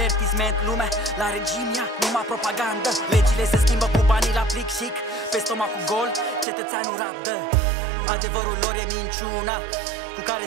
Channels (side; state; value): left; drops out; at 6.5 s